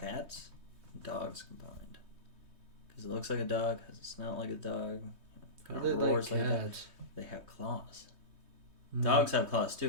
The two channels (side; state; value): left; late; 3.2 ms